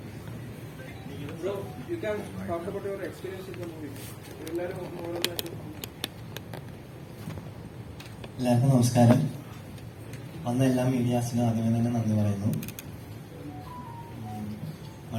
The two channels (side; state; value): both; identical; correlation 1.00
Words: Bro, you can talk about your experience in the movie. എല്ലാവർക്കും നമസ്കാരം. വന്ന എല്ലാ മീഡിയാസിനും ആദ്യമേ തന്നെ നന്ദി പറയുന്നു.